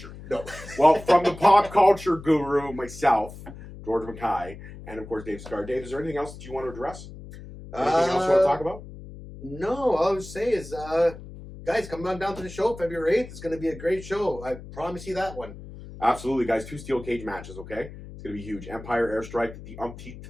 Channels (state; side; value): noise; left; hum, 14 dB below the sound